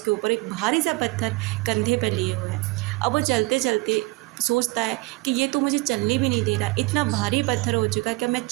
ऊपर एक भारी सा पत्थर कंधे पे लिए हुए है। अब वो चलते चलते सोचता है कि ये तो मुझे चलने भी नहीं दे रहा, इतना भारी पत्थर हो चुका है कि मैं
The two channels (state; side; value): quieter; left; 23.6 dB